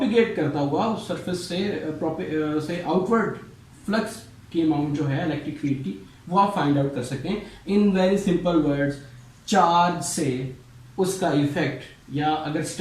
करता हुआ उस सरफेस से आउटवर्ड फ्लक्स की अमाउंट जो है इलेक्ट्रिक फील्ड की वो आप फाइंड आउट कर सकते हैं। In very simple words, charge से उसका इफेक्ट, या अगर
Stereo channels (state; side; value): identical; both; correlation 1.00